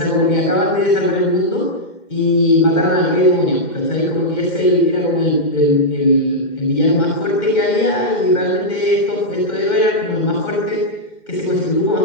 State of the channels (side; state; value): right; late; 2.1 ms